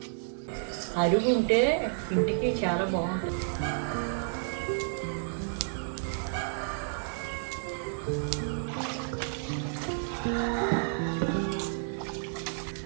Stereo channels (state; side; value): silent; left; 55 dB below the other